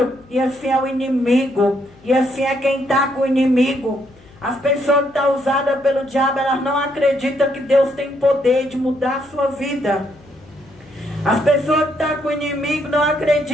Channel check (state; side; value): noise; left; hum, 27 dB below the sound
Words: e assim é o inimigo, e assim é quem está com o inimigo. As pessoas que estão usadas pelo diabo, elas não acreditam que Deus tem poder de mudar a sua vida. As pessoas que estão com o inimigo não